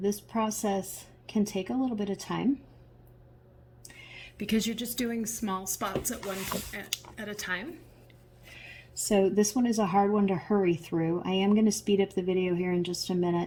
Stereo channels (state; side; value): identical; both; correlation 1.00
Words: this process can take a little bit of time because you're just doing small spots at a time. So this one is a hard one to hurry through. I am going to speed up the video here in just a